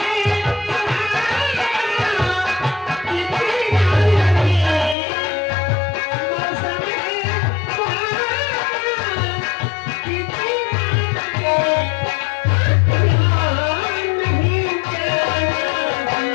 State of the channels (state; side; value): drops out; right; at 5.0 s